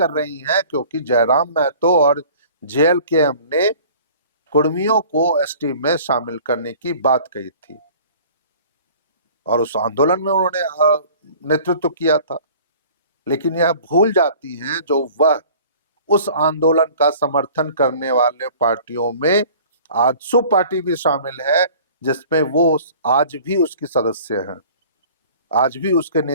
रही हैं क्योंकि जयराम महतो और जेएलकेएम ने कुर्मियों को एसटी में शामिल करने की बात कही थी और उस आंदोलन में उन्होंने नेतृत्व किया था। लेकिन यह भूल जाती हैं जो वह उस आंदोलन का समर्थन करने वाले पार्टियों में आजसू पार्टी भी शामिल है, जिसमें वो आज भी उसकी सदस्य हैं, आज भी उसके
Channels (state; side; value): inverted; both; correlation -0.47